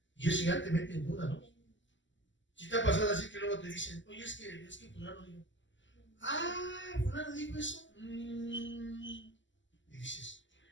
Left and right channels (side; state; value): right; late; 0.54 ms